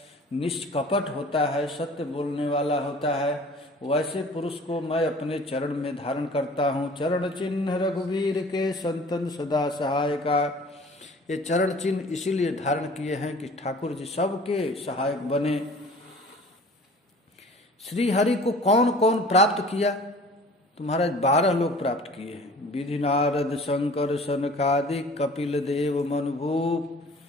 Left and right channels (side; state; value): both; normal; correlation 0.46